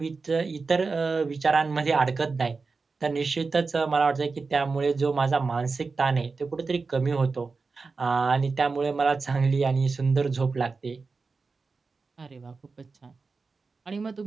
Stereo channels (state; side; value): quieter; left; 4.3 dB